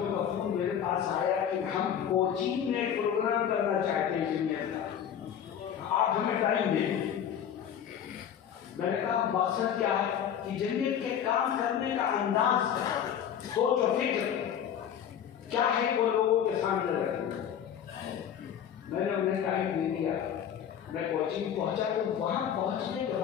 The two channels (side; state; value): right; quieter; 9.0 dB